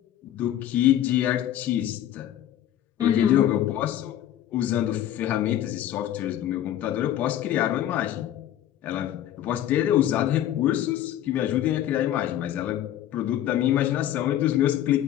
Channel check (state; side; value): quieter; right; 11.9 dB